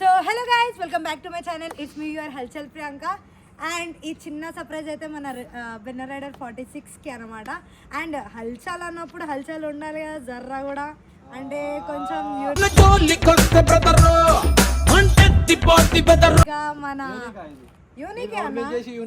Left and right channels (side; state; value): both; identical; correlation 1.00